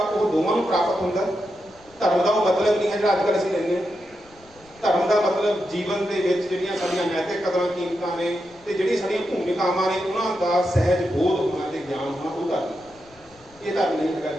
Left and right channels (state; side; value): noise; left; rumble, 27 dB below the sound